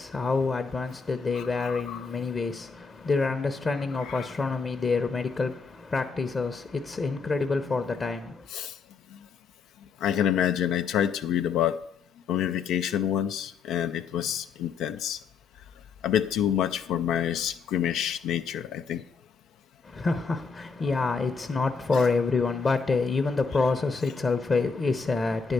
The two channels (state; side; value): quieter; right; 5.4 dB